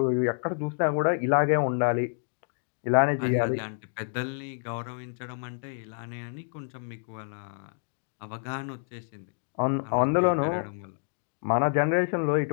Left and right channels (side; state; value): right; silent; digital silence